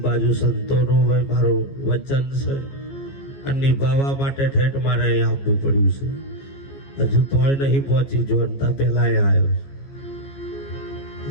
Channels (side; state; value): right; late; 15 ms